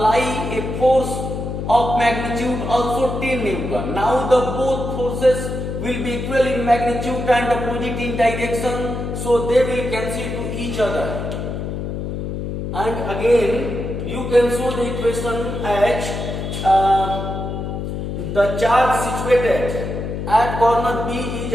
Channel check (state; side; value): noise; left; hum, 4 dB below the sound